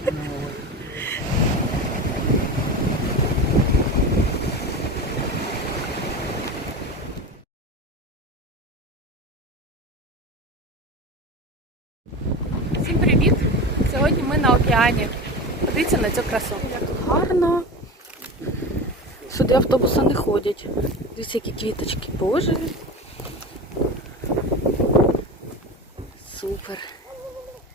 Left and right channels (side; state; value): both; normal; correlation 0.27